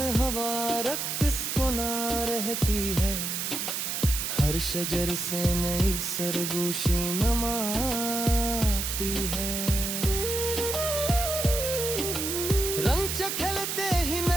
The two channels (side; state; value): right; noise; hiss, 2 dB below the sound